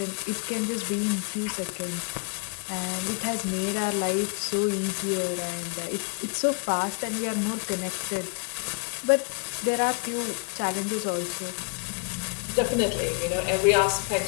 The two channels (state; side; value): quieter; right; 37.6 dB